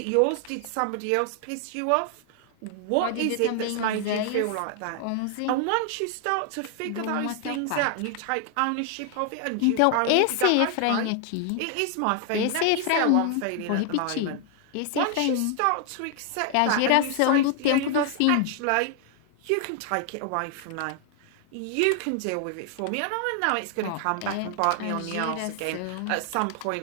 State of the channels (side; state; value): both; different; correlation 0.00